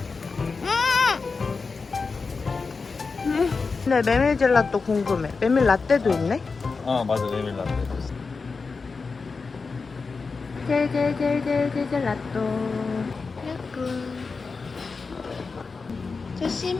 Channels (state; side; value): quieter; right; 4.5 dB